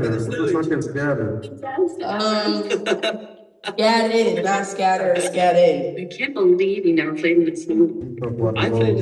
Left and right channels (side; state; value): both; identical; correlation 1.00